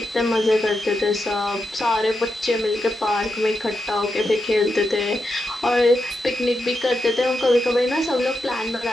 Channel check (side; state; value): both; normal; correlation 0.86